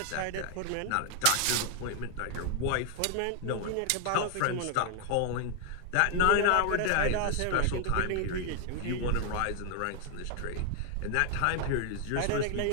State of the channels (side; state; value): both; different; correlation 0.00